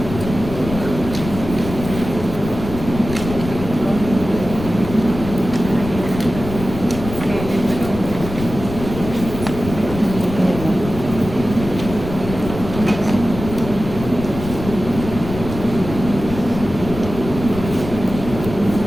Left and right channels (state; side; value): noise; left; rumble, 9 dB below the sound